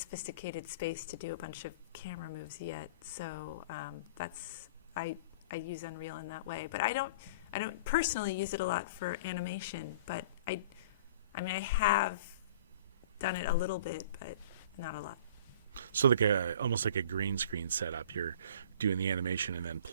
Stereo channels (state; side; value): inverted; both; correlation -0.45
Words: space to do a bunch of camera moves yet. So that's I use Unreal in that way, but I don't personally use it a lot for animation. But I have done it a little bit, but not a lot. So like almost like a green screen setup. You're doing the animation and then